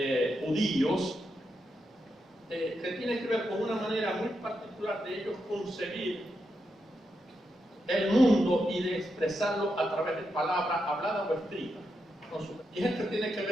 judíos, que tiene que ver con una manera muy particular de ellos concebir el mundo y de expresarlo a través de palabras habladas o escritas. Y esto tiene que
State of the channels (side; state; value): both; normal; correlation 0.84